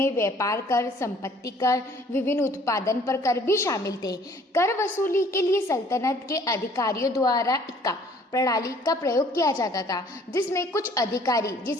व्यापार कर, संपत्ति कर, विभिन्न उत्पादन पर कर भी शामिल थे। कर वसूली के लिए सल्तनत के अधिकारियों द्वारा इक्का प्रणाली का प्रयोग किया जाता था, जिसमें कुछ अधिकारी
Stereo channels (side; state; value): both; normal; correlation 0.57